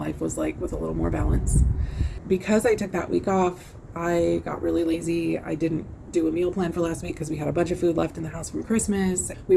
was like with a little more balance. Because I took that week off, I got really lazy. I didn't do a meal plan for last week because we had a bunch of food left in the house from Christmas. We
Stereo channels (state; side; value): identical; both; correlation 1.00